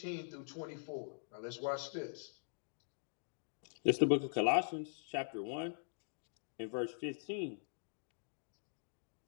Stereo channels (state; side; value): silent; right; digital silence